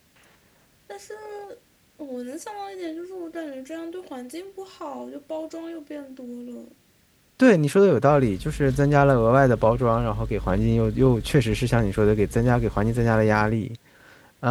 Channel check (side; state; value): both; identical; correlation 1.00